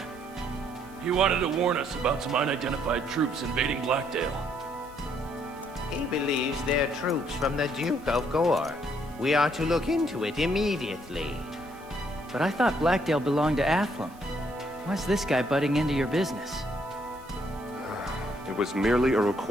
He wanted to warn us about some unidentified troops invading Blackdale. He believes they're troops from the Duke of Gore. We are to look into it immediately. But I thought Blackdale belonged to Athlum. Why's this guy butting into your business? It was merely a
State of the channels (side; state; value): right; noise; hiss, 26 dB below the sound